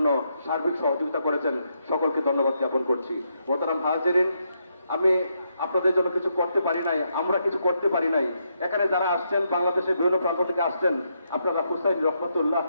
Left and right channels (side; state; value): both; inverted; correlation -0.79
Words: সার্বিক সহযোগিতা করেছেন, সকলকে ধন্যবাদ জ্ঞাপন করছি। মোহতারাম হাজিরিন, আমি আপনাদের জন্য কিছু করতে পারি নাই, আমরা কিছু করতে পারি নাই। এখানে যারা আসছেন, বাংলাদেশের বিভিন্ন প্রান্ত থেকে আসছেন, আপনারা হুসাইন রহমতুল্লাহ